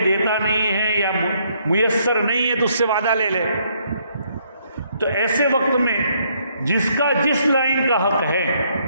دیتا نہیں ہے یا میسر نہیں ہے, تو اس سے وعدہ لے لے. تو ایسے وقت میں جس کا جس لائن کا حق ہے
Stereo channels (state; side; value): inverted; both; correlation -0.70